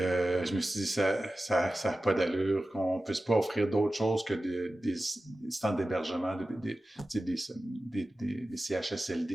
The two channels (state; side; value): normal; both; correlation 0.95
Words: me suis dit, ça a pas d'allure qu'on puisse pas offrir d'autres choses que des stands d'hébergement, des